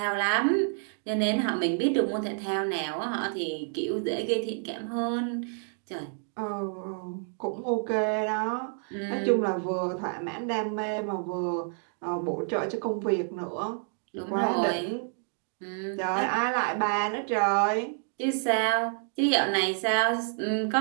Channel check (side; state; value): left; silent; 59 dB below the other